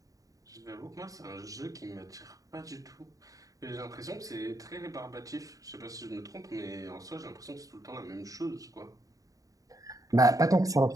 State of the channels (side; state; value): left; late; 0.17 ms